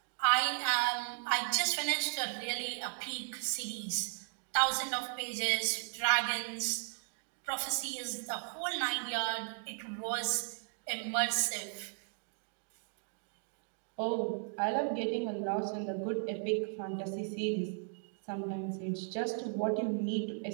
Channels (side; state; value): left; silent; 54 dB below the other